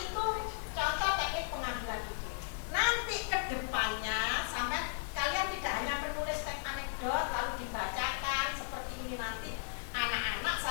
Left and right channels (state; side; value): silent; right; digital silence